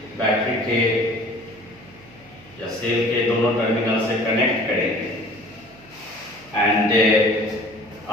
बैटरी के या सेल के दोनों टर्मिनल से कनेक्ट करेंगे, and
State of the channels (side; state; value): right; noise; hum, 24 dB below the sound